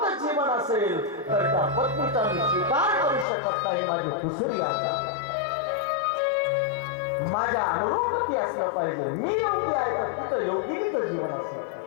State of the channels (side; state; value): right; drops out; at 3.2 s